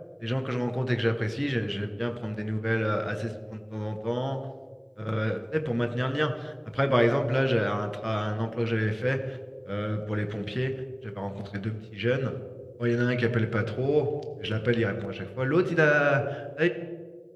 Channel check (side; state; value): both; identical; correlation 1.00